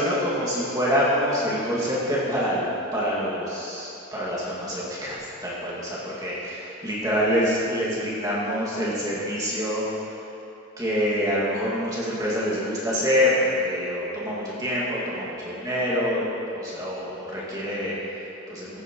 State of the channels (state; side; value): normal; both; correlation 0.26